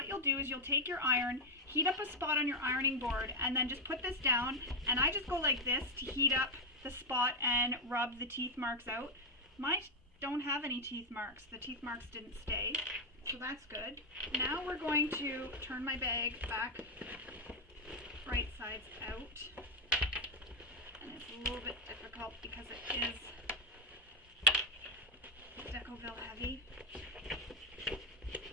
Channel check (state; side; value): normal; both; correlation 0.04